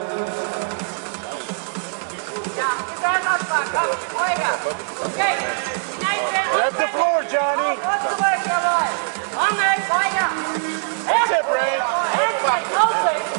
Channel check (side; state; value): left; silent; digital silence